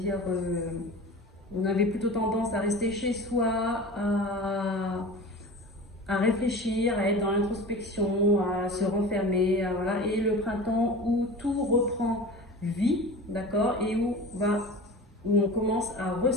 on avait plutôt tendance à rester chez soi, à réfléchir, à être dans l'introspection, à se renfermer, voilà. Et le printemps où tout reprend vie, d'accord, et où on commence à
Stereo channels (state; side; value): normal; both; correlation 0.35